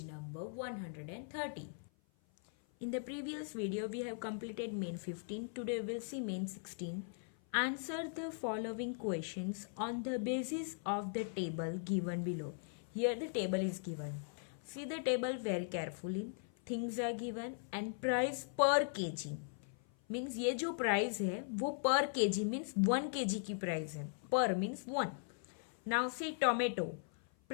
number 130. In the previous video we have completed main 15. Today we will see main 16. Answer the following questions on the basis of the table given below. Here the table is given. See the table very carefully. Things are given and price per kg. Means ये जो price है वो पर KG means 1 KG की price है. पर means 1. Now see tomato.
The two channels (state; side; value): silent; right; 52 dB below the other